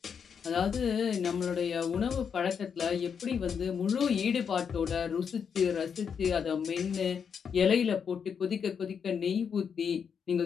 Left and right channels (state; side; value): quieter; right; 6.9 dB